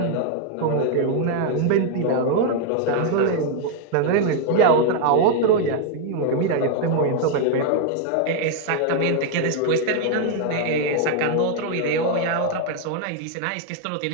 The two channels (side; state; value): both; different; correlation 0.00